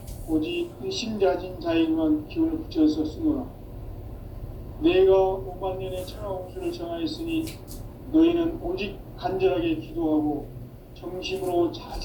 오직 일심자진 자에게만 기운을 붙여서 쓰노라. 내가 5만 년의 천하운수를 정하였으니 너희는 오직 간절하게 기도하고 정심으로 잘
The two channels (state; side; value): identical; both; correlation 1.00